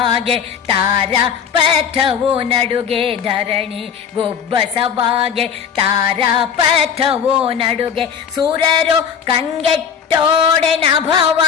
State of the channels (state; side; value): quieter; right; 7.5 dB